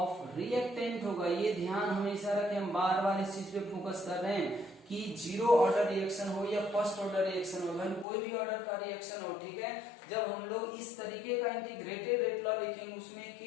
reactant होगा। ये ध्यान हमेशा रखें, हम बार बार इस चीज पे फोकस कर रहे हैं कि जीरो ऑर्डर रिएक्शन हो या फर्स्ट ऑर्डर रिएक्शन हो, कोई भी ऑर्डर का रिएक्शन हो, ठीक है, जब हम लोग इस तरीके का इंटीग्रेटेड रेट लॉ लिखेंगे उसमें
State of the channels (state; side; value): drops out; right; at 8.1 s